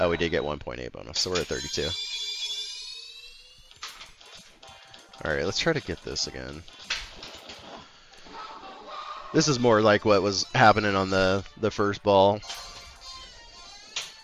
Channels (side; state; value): both; identical; correlation 1.00